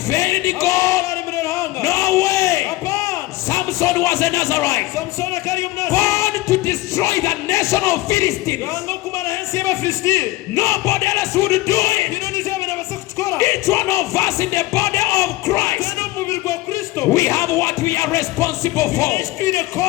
failed God. No way. Samson was a Nazarite, born to destroy the nation of Philistines. Nobody else would do it. Each one of us in the body of Christ, we have what we are responsible for.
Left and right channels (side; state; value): right; quieter; 18.9 dB